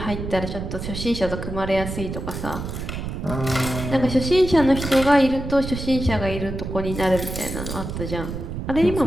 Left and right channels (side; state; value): right; noise; rumble, 6 dB below the sound